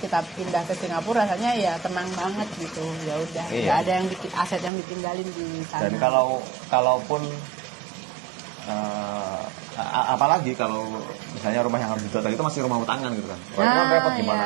pindah ke Singapura rasanya ya tenang banget gitu. Ya udah, Iya. nggak ada yang bikin aset yang ditinggalin di sana. Dan kalaupun apalagi kalau misalnya rumah yang harus dijual tadi itu masih rumah utangan gitu kan. Wah, itu kan Nah, repot gimana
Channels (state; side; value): drops out; left; at 4.7 s